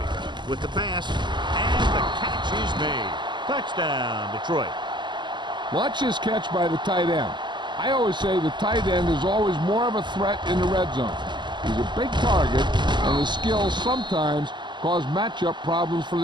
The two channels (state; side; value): late; left; 0.22 ms